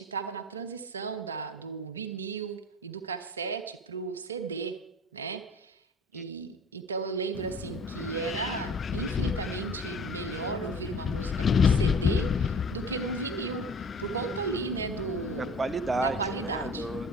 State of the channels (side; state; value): both; normal; correlation 0.42